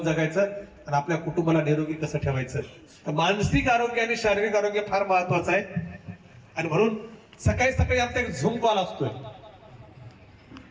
जगायचं आणि आपल्या कुटुंबाला निरोगी कसं ठेवायचं. तर मानसिक आरोग्य आणि शारीरिक आरोग्य फार महत्वाचं आहे. आणि म्हणून सकाळी सकाळी आमचा एक झूम कॉल असतोय.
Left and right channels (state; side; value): identical; both; correlation 1.00